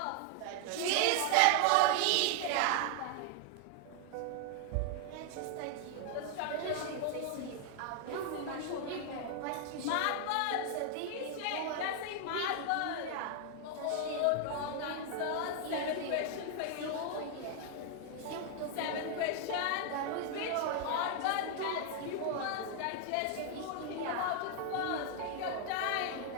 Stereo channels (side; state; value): both; different; correlation 0.00